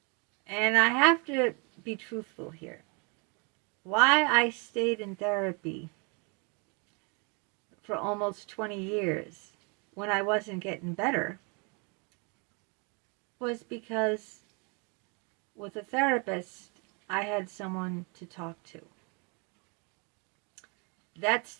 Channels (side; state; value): left; quieter; 33.6 dB